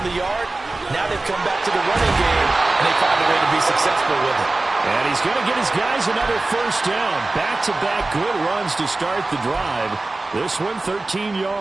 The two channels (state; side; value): quieter; left; 3.1 dB